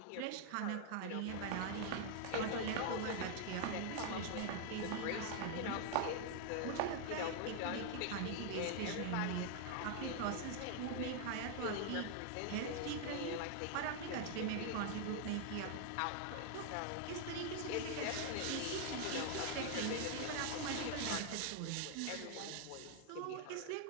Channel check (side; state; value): both; different; correlation 0.00